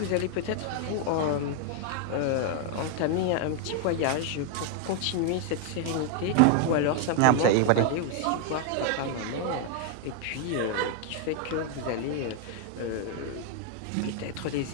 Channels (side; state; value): both; different; correlation 0.00